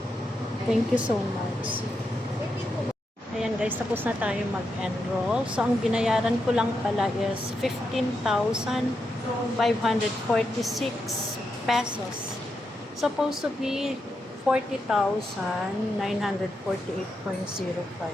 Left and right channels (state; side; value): normal; both; correlation 0.85